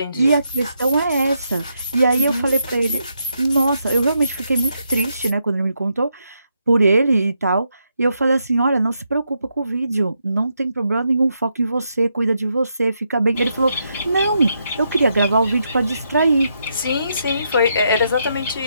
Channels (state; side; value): inverted; both; correlation -0.80